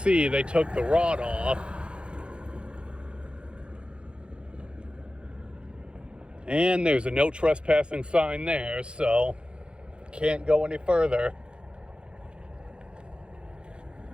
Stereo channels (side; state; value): left; late; 0.055 ms